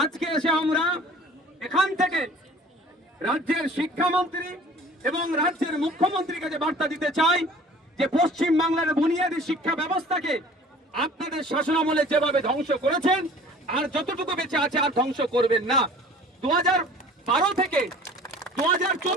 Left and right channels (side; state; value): both; normal; correlation 0.47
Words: আজকে এসে আমরা এখান থেকে রাজ্যের শিক্ষামন্ত্রী এবং রাজ্যের মুখ্যমন্ত্রীকে যে বার্তা দিতে চাই যে পশ্চিম বাংলার বুনিয়াদী শিক্ষা ব্যবস্থাকে আপনাদের শাসনামলে যেভাবে ধ্বংস করেছেন আর যতটুকু বেঁচে আছে আর ধ্বংস করবেন না। 2012 থেকে